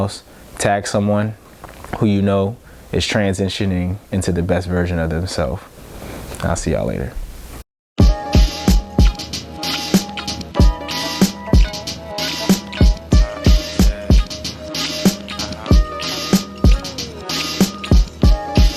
tag someone who you know is transitioning into the best version of themselves. I'll see y'all later.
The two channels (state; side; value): identical; both; correlation 1.00